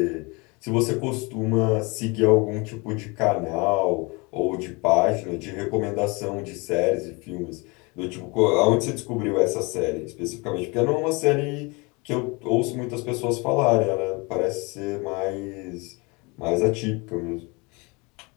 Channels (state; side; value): quieter; right; 27.9 dB